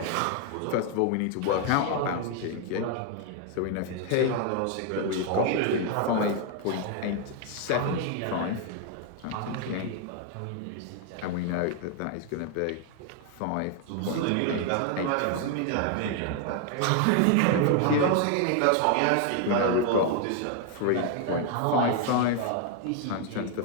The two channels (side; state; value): both; different; correlation 0.00